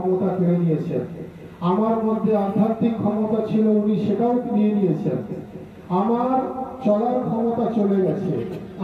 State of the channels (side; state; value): both; identical; correlation 1.00